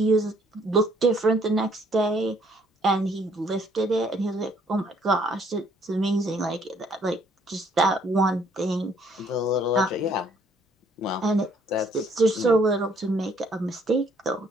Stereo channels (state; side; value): normal; both; correlation 0.64